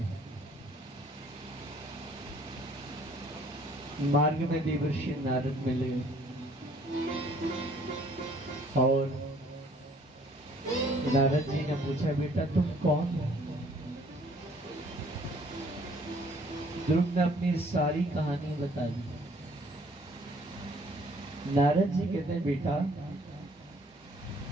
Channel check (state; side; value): normal; both; correlation 0.59